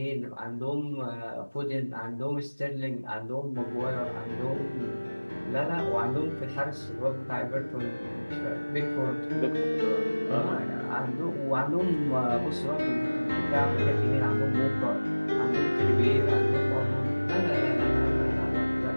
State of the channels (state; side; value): inverted; both; correlation -1.00